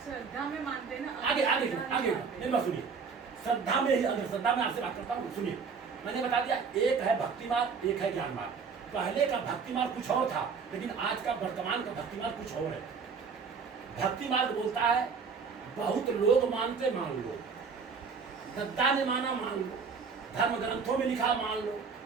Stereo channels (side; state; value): left; quieter; 5.5 dB